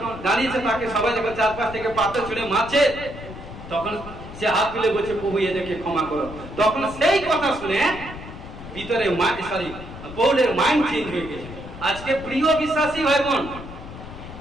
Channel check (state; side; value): noise; left; rumble, 13 dB below the sound